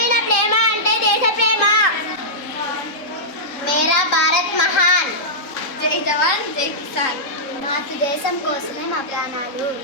ప్రేమ అంటే దేశ ప్రేమ. మేరా భారత్ మహాన్. జై జవాన్ జై కిసాన్. మాతృదేశం కోసమే మా ప్రాణాలు.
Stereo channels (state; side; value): late; right; 3.8 ms